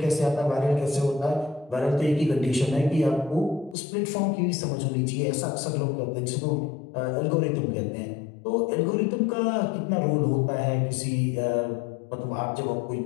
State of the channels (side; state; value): right; drops out; at 3.8 s